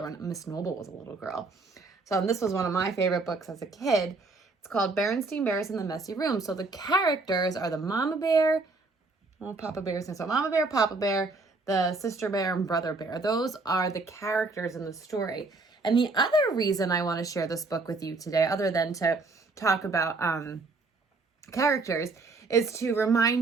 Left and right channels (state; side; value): quieter; left; 3.6 dB